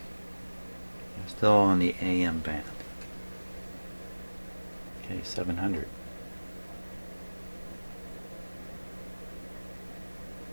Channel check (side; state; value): both; inverted; correlation -1.00